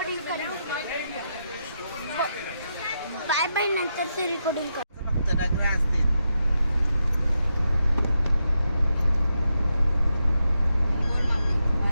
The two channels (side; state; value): both; inverted; correlation -0.84